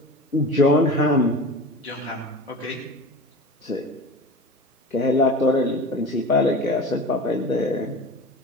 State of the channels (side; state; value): both; normal; correlation 0.33